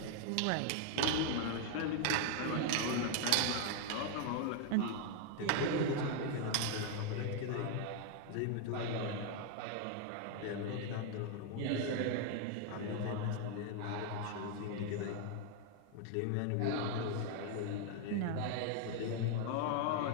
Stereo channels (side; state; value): both; different; correlation 0.00